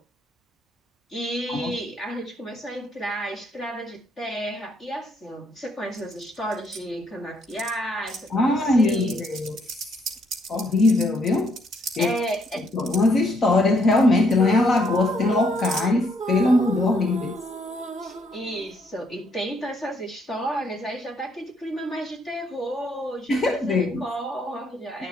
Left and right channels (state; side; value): normal; both; correlation 0.70